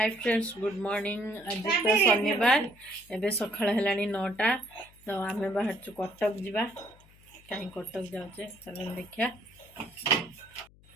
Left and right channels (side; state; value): left; noise; hum, 26 dB below the sound